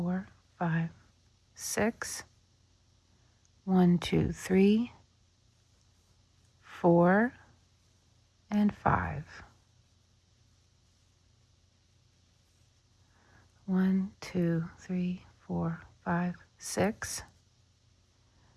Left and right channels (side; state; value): both; identical; correlation 1.00